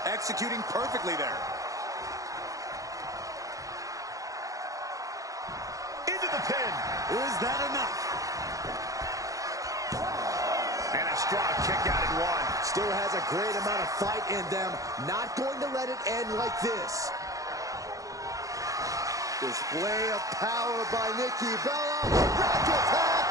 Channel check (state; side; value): late; left; 0.16 ms